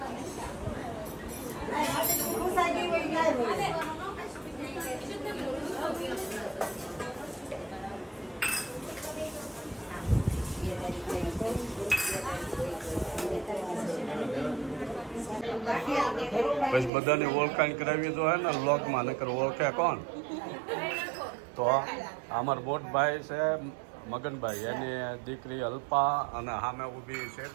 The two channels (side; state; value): left; drops out; at 16.9 s